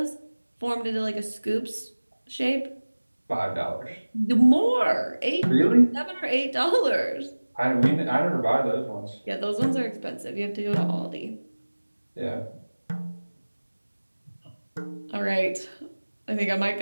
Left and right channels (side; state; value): both; inverted; correlation -1.00